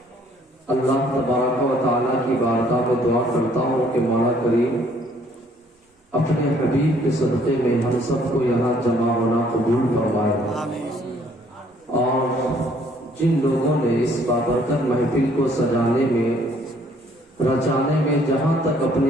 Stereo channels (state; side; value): normal; both; correlation 0.62